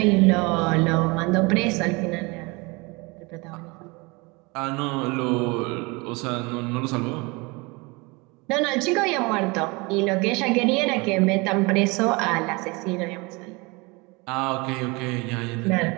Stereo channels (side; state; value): left; quieter; 26.5 dB